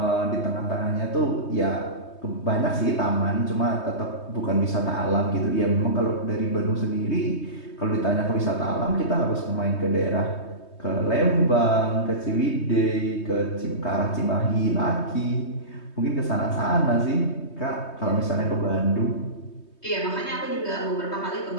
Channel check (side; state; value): right; late; 3.2 ms